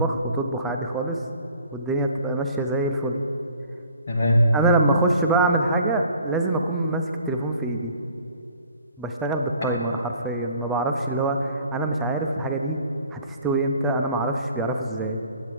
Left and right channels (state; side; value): inverted; both; correlation -0.51